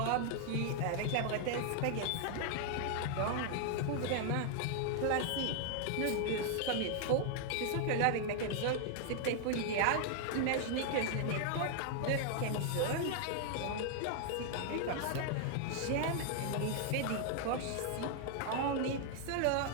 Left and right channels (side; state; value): both; different; correlation 0.00